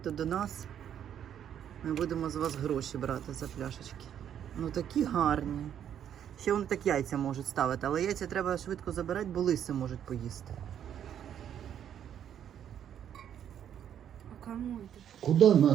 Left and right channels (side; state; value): left; quieter; 9.5 dB